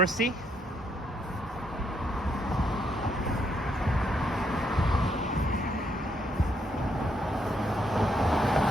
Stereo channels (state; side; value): normal; both; correlation 0.75